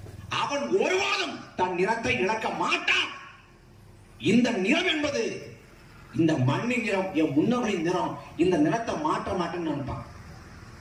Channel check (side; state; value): both; identical; correlation 1.00